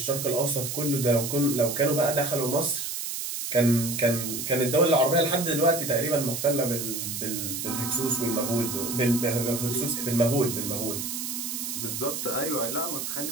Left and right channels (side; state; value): right; noise; hiss, 4 dB below the sound